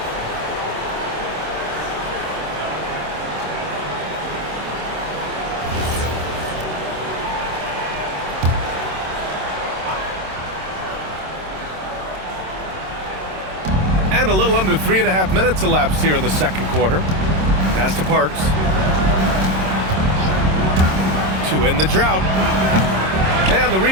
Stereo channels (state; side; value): late; left; 26 ms